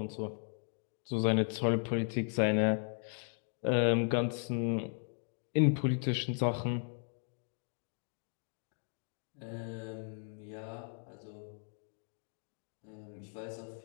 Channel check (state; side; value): silent; right; 53 dB below the other